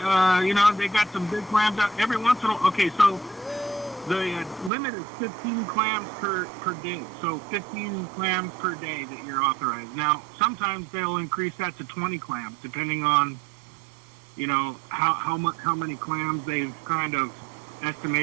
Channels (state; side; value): drops out; left; at 4.7 s